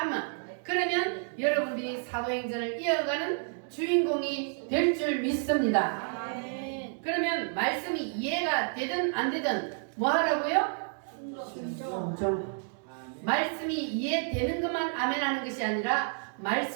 그러면 여러분들이 사도행전을 이어가는 주인공이 될 줄 믿습니다. 아멘. 그러면 말씀이 이해가 되든 안 되든 뭐 하라고요? 순종. 말씀이 이해되는 것만 아멘 하는 것이 아니라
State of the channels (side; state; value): left; silent; 57 dB below the other